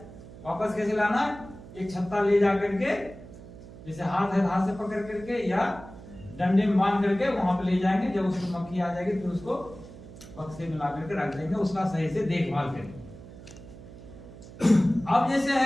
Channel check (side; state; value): right; noise; hum, 17 dB below the sound